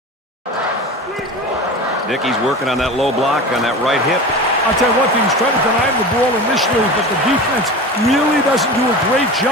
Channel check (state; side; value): normal; both; correlation 0.31